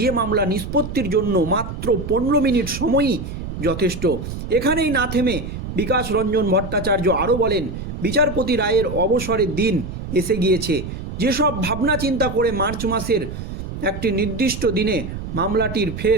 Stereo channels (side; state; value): right; noise; rumble, 8 dB below the sound